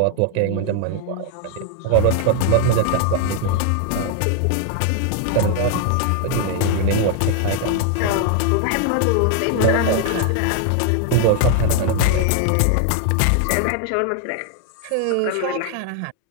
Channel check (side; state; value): both; different; correlation 0.00